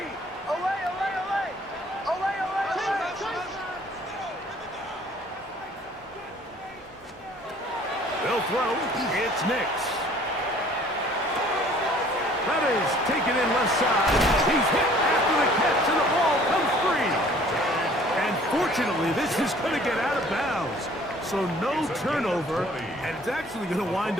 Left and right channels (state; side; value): normal; both; correlation 0.54